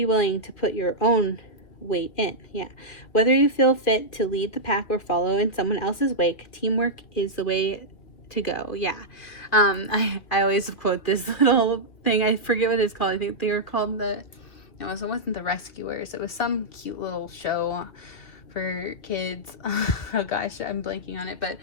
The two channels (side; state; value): right; late; 2.4 ms